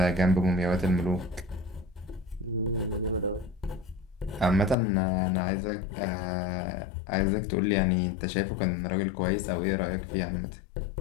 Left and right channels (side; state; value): right; drops out; at 4.8 s